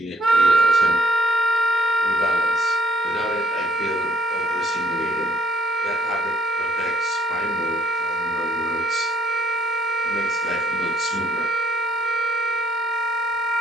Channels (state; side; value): normal; both; correlation 0.66